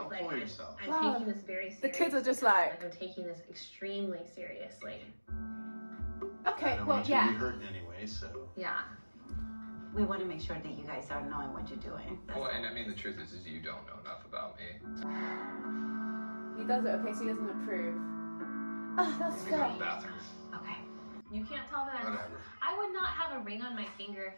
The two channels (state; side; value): inverted; both; correlation -1.00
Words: It's like, fool yourself. I'm Wow. taking this very seriously. The kids are just like, I'm taking this extremely seriously. I okay, don't well, want you to be yeah. hurting anyway, so. Yeah. We want to make sure that you guys are knowing what you're doing. Well, and I mean, the truth is you don't know enough about me. He does it, okay, so he doesn't approve. Oh, that's Let me go to fair. the bathroom. Okay. You can't tell that Whatever. I would not have a ring on my finger if